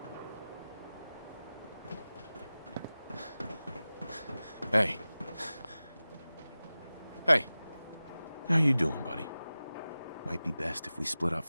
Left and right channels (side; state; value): both; inverted; correlation -0.96